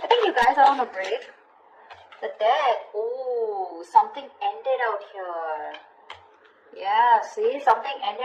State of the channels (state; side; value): identical; both; correlation 1.00